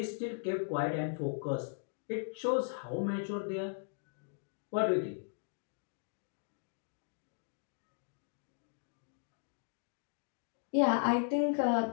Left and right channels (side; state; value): right; silent; digital silence